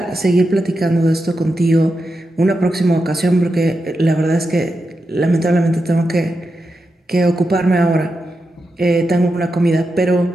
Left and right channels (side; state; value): both; normal; correlation 0.88